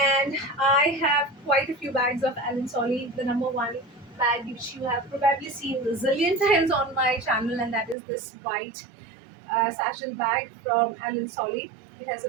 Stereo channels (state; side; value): drops out; left; at 8.0 s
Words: I have quite a few bags of Alan Solly. The number one bag, which you have probably seen a zillion times on my channel, and that is this white satchel bag from Alan Solly. It has